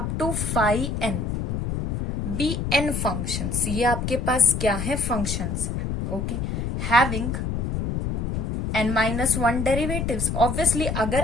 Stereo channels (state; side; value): noise; left; rumble, 2 dB below the sound